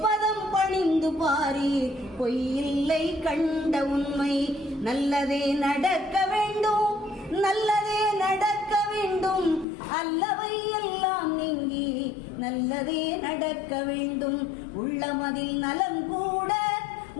பணிந்து பாரி பொய்யில்லை கண்ட உண்மை. நல்லதே நடக்க வேண்டும், நல்லதே நடக்க வேண்டும், அல்லவை எல்லாம் நீங்கி நல்லதே நடக்க வேண்டும். உள்ளமதில் நலம் கூட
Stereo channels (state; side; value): drops out; right; at 9.7 s